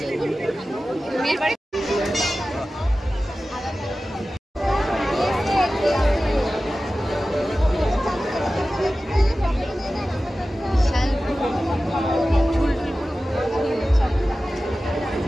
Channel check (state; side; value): normal; both; correlation 0.95